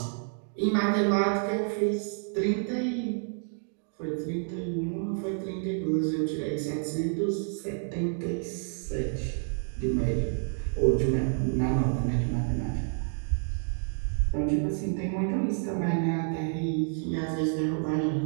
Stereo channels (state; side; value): silent; left; 59 dB below the other